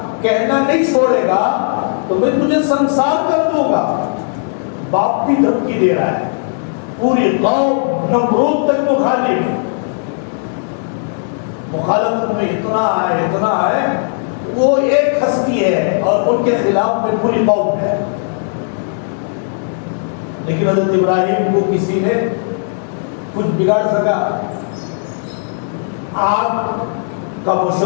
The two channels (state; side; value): silent; right; digital silence